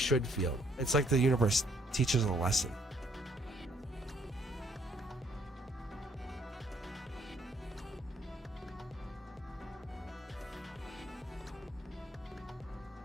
feel. It's like the universe teaches a lesson.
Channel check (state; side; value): normal; both; correlation 0.66